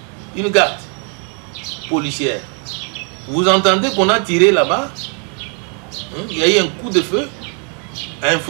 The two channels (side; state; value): left; quieter; 39.7 dB